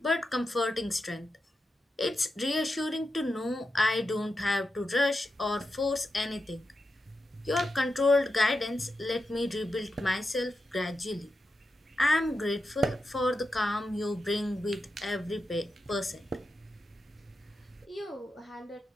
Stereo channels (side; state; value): both; normal; correlation 0.88